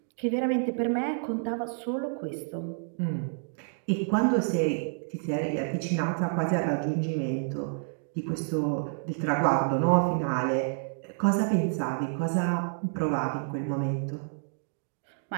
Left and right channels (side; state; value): left; silent; digital silence